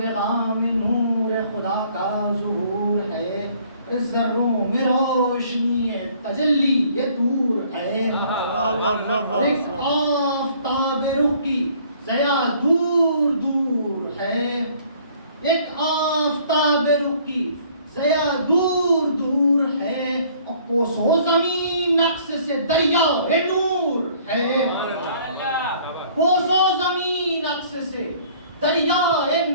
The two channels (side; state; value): both; inverted; correlation -0.58